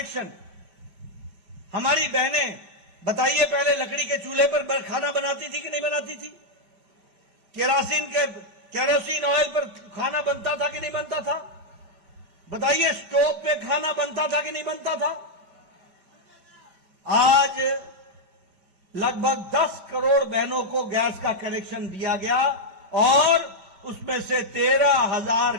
हमारी बहनें बताइए, पहले लकड़ी के चूल्हे पर खाना बनाती थी कि नहीं बनाती थी? केरोसिन ऑयल पर खाना बनता था कि नहीं बनता था? बताइए, स्टोव पे खाना बनता था कि नहीं बनता था? आज लगभग 10 करोड़ बहनों को गैस का कनेक्शन दिया गया और उसमें से 13,000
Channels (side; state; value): left; late; 5.2 ms